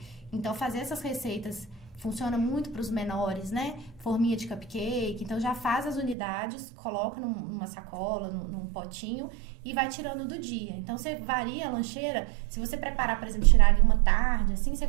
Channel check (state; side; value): drops out; left; at 6.2 s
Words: Então, fazer essas receitas funciona muito para os menores, né? Forminha de cupcake. Então, já faz as unidades, coloca numa sacola, num potinho e vai tirando do dia. Então, você varia a lancheira. Se você preparar, por exemplo, tirar ali uma tarde, assim, você